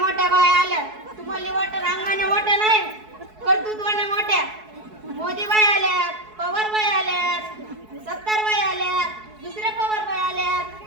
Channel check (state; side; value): late; left; 4.7 ms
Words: बाया आल्या. तुम्हाला वाटत अंगाने मोठ्या नाही, कर्तृत्वाने मोठ्या. मोदी बाई आल्यात, पवार बाई आल्यात, सत्तार बाई आल्यात, दुसऱ्या पवार बाई आल्यात,